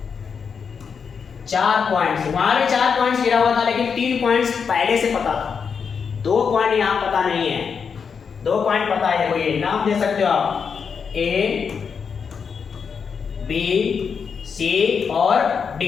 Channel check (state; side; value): quieter; right; 6.2 dB